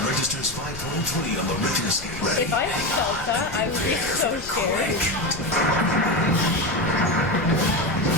registers 5.3 on the Richter scale. If I felt that, I would be so scared.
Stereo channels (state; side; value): noise; left; rumble, 16 dB below the sound